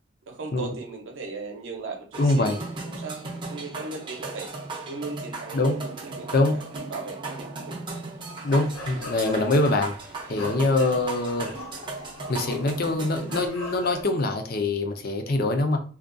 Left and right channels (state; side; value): normal; both; correlation 0.41